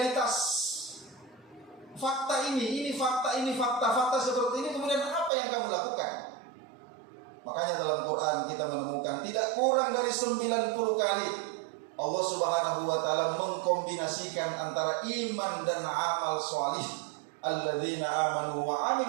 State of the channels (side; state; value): left; drops out; at 5.3 s